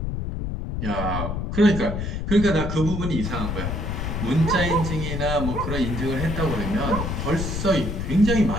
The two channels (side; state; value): left; noise; rumble, 3 dB below the sound